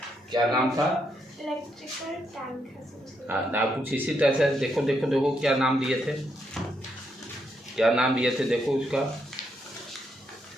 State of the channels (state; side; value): normal; both; correlation 0.78